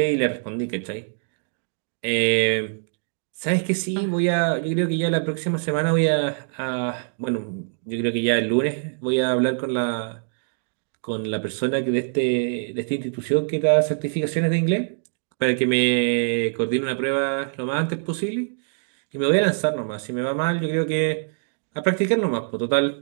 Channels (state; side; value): silent; left; digital silence